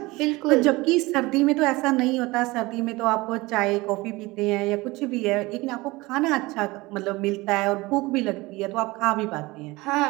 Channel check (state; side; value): quieter; left; 21.7 dB